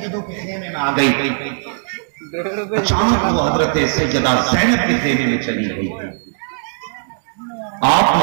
کے خیمے میں آ گئی، اچانک وہ حضرت سیدہ زینب کے خیمے میں چلی گئی۔ آپ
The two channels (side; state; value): left; silent; digital silence